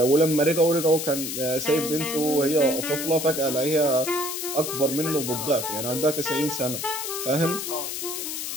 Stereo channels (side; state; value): left; noise; hiss, 5 dB below the sound